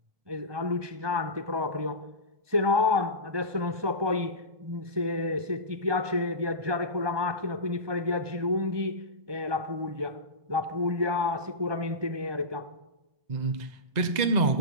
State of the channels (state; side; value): late; left; 1.2 ms